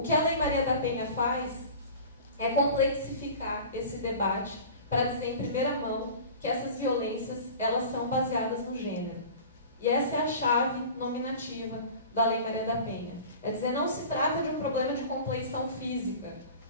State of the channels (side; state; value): both; inverted; correlation -0.39